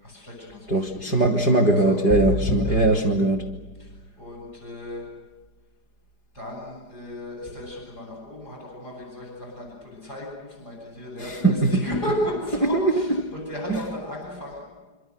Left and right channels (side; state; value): right; late; 4.9 ms